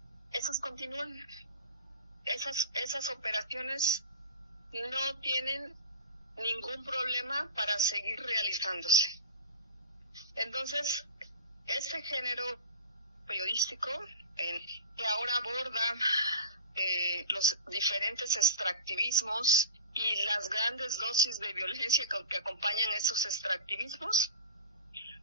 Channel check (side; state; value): both; inverted; correlation -0.30